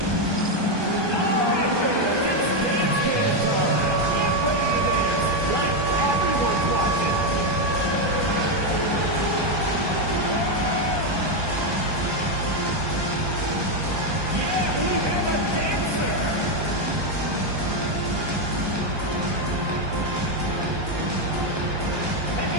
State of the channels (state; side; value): late; left; 1.2 ms